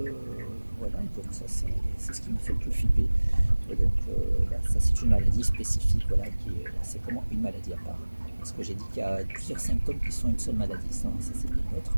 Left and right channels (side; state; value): both; inverted; correlation -1.00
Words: voilà, donc ça c'est ce qui me fait le plus flipper. Donc là, ça c'est une maladie spécifique, voilà, c'est vraiment une maladie à part. Parce que j'ai dit qu'il y a plusieurs symptômes qui sont une seule maladie, ça c'est bien neutre.